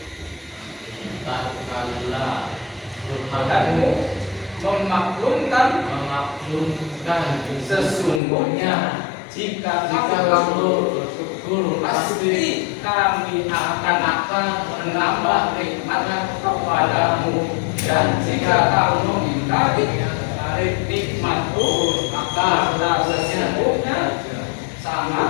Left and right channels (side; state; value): right; drops out; at 8.2 s